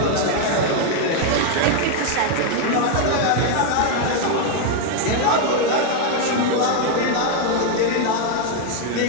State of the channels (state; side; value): different; both; correlation 0.01